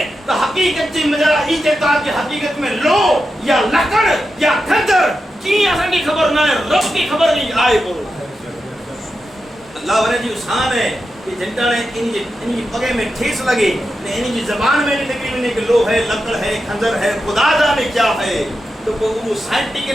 تو حقیقت جی مجرا ای کہتا کہ حقیقت میں لو یا لکڑ یا کھنجر کی اساں کی خبر نہ ہے رب کی خبر نہیں آئے کو. اللہ ورے جی شان ہے کہ جنٹا نے انہی پگے میں ٹھیس لگے انہی زبان میں نہیں نکلی میں کہ لو ہے لکڑ ہے کھنجر ہے خدا جانے کیا ہے. تو وہ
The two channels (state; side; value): normal; both; correlation 0.89